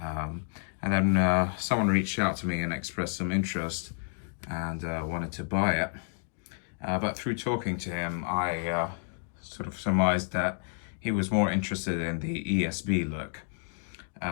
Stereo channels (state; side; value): silent; right; digital silence